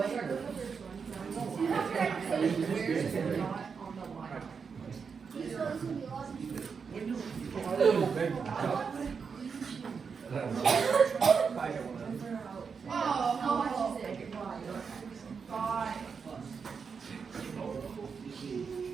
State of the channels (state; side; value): quieter; left; 5.8 dB